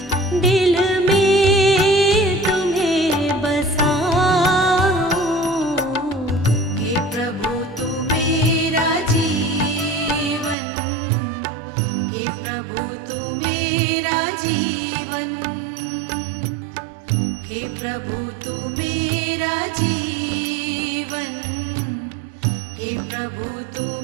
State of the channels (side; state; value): left; drops out; at 10.6 s